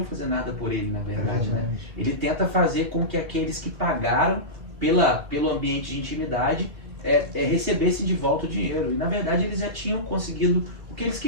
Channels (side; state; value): left; late; 2.3 ms